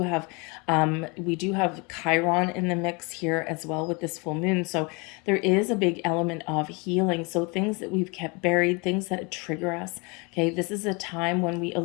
have Chiron in the mix here as well with this full moon. So there is a big element of healing. So things that we've kept buried, things that trigger us. Okay, this is a time when we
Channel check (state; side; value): quieter; right; 29.7 dB